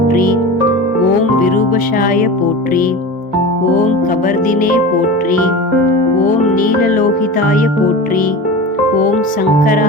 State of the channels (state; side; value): normal; both; correlation 0.30